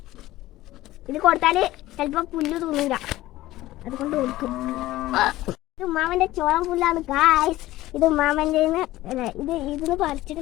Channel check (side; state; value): right; quieter; 16.5 dB